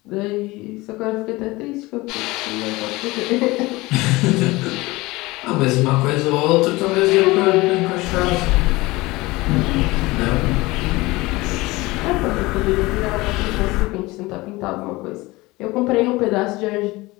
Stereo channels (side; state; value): right; quieter; 21.2 dB